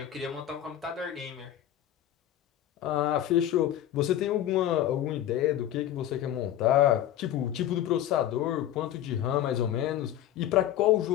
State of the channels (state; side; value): quieter; right; 11.7 dB